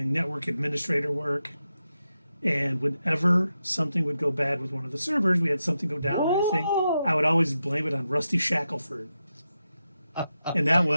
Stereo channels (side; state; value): both; inverted; correlation -0.88